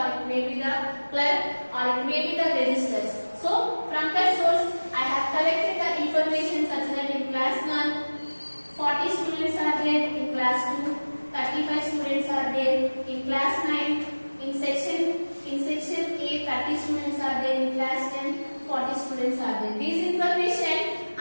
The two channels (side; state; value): both; inverted; correlation -1.00